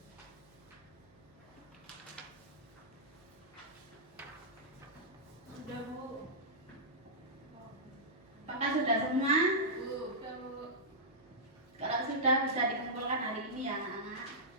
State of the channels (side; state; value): right; noise; hum, 29 dB below the sound